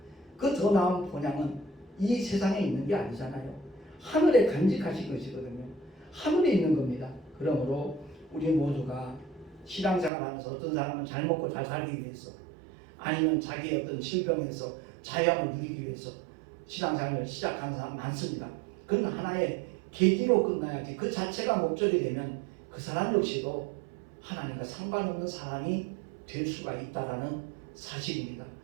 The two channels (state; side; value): drops out; left; at 10.1 s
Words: 그 더 나은 본향은 이 세상에 있는 게 아니잖아요. 하늘에 간직하신 것이거든요. 하늘에 있는 겁니다. 그러므로 우리 모두가 신앙생활하면서 어떤 사람은 잘 먹고 잘 살기 위해서, 아니면 자기의 어떤 질병에서 자유함을 누리기 위해서 신앙생활을 시작하는 사람 많습니다. 그건 하나의 계기로 끝나야지 그 자체가 목적이 되면 그 사람 역시도 하나님과 상관없는 사람이 될 수가 있다는 사실입니다.